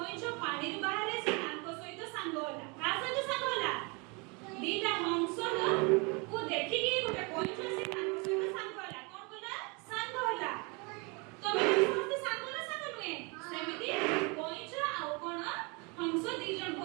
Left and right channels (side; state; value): left; quieter; 30.3 dB